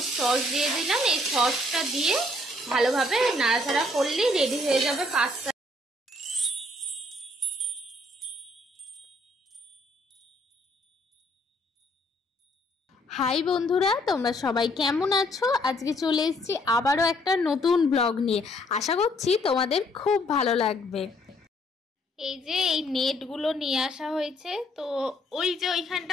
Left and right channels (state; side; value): normal; both; correlation 0.65